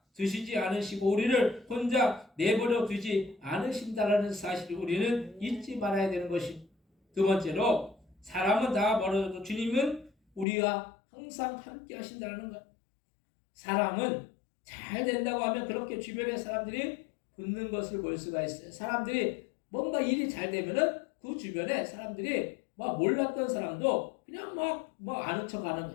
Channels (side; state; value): right; drops out; at 10.5 s